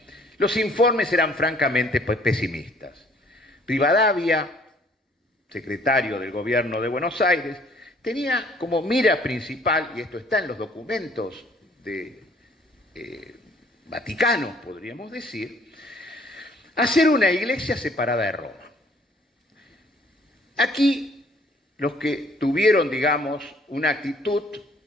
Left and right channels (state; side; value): normal; both; correlation 0.59